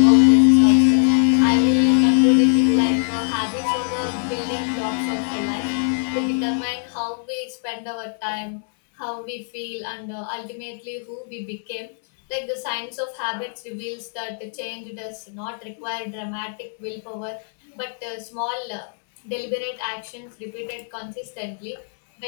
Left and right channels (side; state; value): right; silent; digital silence